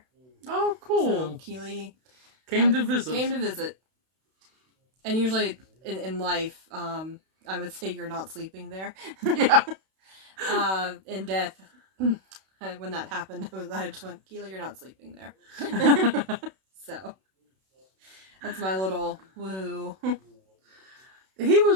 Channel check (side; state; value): left; late; 32 ms